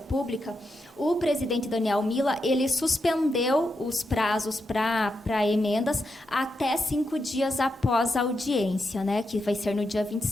o presidente Daniel Mila, ele suspendeu os prazos para emendas até 5 dias após a audiência, né, que vai ser no dia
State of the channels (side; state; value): both; normal; correlation 0.85